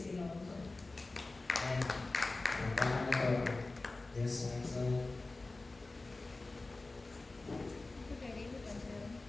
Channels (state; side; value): quieter; right; 3.3 dB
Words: you know. So, And, paano to? Yes, so,